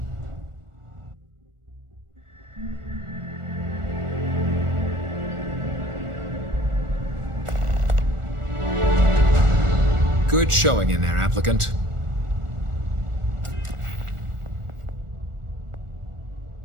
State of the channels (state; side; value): late; left; 1.4 ms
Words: Good showing in there, applicant.